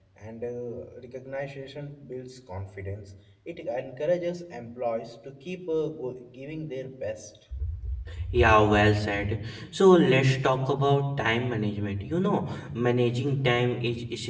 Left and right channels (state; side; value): identical; both; correlation 1.00